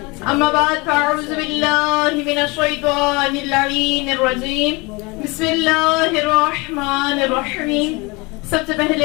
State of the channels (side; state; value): right; quieter; 26.2 dB